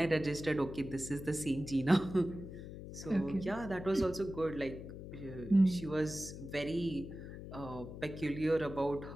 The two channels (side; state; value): left; noise; hum, 11 dB below the sound